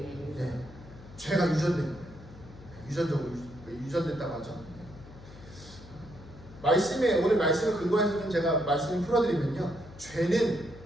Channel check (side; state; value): left; noise; hum, 18 dB below the sound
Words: 죄가 유전된 거예요. 유전적으로 유전됐다고 하죠. 오늘 말씀을 근거해서 좀 제가 말씀을 풀어드리면요. 죄는